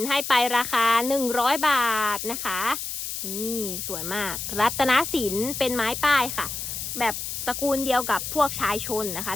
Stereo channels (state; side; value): noise; left; hiss, 5 dB below the sound